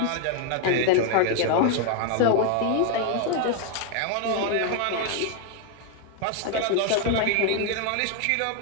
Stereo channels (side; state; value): both; different; correlation 0.00